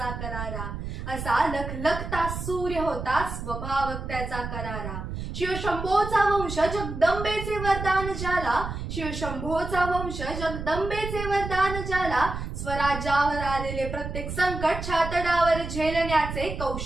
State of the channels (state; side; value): noise; right; rumble, 6 dB below the sound